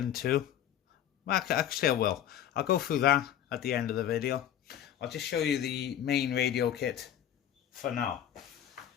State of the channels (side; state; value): right; quieter; 10.5 dB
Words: too, well, actually I will. I'll go through that at the end of the video. I'll just show you the main radio kit for now.